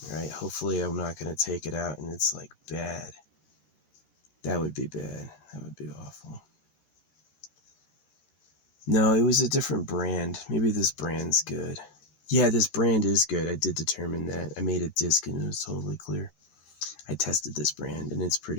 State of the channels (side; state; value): right; late; 13 ms